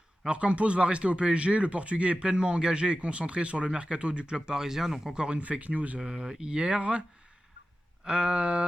Alors Campos va rester au PSG, le Portugais est pleinement engagé et concentré sur le mercato du club parisien, donc encore une fake news hier.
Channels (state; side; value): normal; both; correlation 0.93